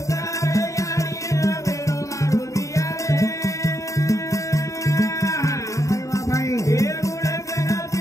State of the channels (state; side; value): late; right; 0.15 ms